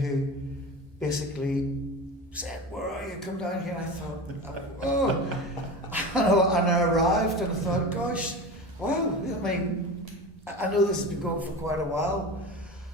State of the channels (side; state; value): both; normal; correlation 0.29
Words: basically said, "Where are you? Come down here." And I thought, oh, and I arrived, and I thought, gosh, wow. I mean, I know this has been going for quite a while,